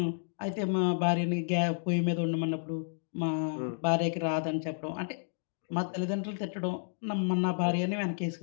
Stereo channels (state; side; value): silent; right; digital silence